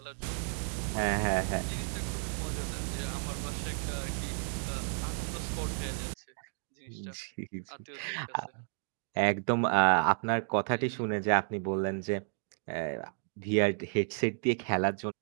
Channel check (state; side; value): silent; left; digital silence